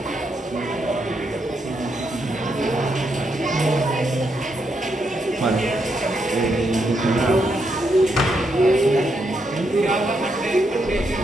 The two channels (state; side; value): normal; both; correlation 0.80